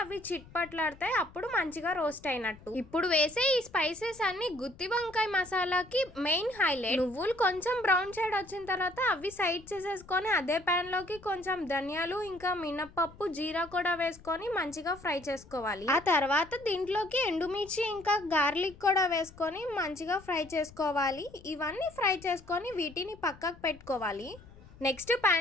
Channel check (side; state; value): left; noise; rumble, 21 dB below the sound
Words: అవి చిట్పట్లాడతాయి, అప్పుడు మంచిగా రోస్ట్ అయినట్టు. ఇప్పుడు వేసే ఈ స్పైసెస్ అన్ని గుత్తి వంకాయ మసాలాకి మెయిన్ హైలైట్. నువ్వులు కొంచెం బ్రౌన్ షేడ్ వచ్చిన తర్వాత అవి సైడ్ చేసేసుకొని అదే ప్యాన్ లోకి కొంచెం ధనియాలు ఇంకా మినపప్పు జీరా కూడా వేసుకొని మంచిగా ఫ్రై చేసుకోవాలి. ఆ తర్వాత దీంట్లోకి ఎండుమిర్చి ఇంకా గార్లిక్ కూడా వేసుకొని మంచిగా ఫ్రై చేసుకోవాలి. ఇవన్నీ ఫ్రై చేసుకొని వీటిని పక్కకు పెట్టుకోవాలి. నెక్స్ట్